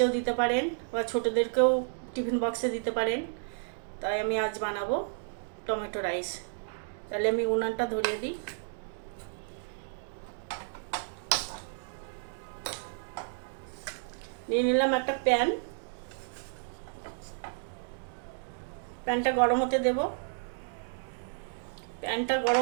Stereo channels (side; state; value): left; silent; digital silence